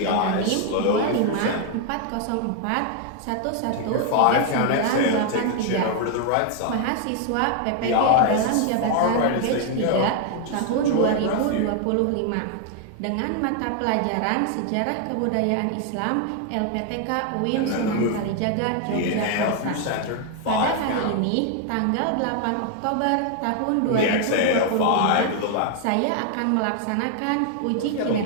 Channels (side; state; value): both; different; correlation 0.00